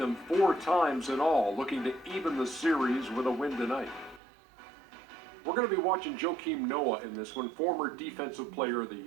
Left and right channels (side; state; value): left; drops out; at 4.2 s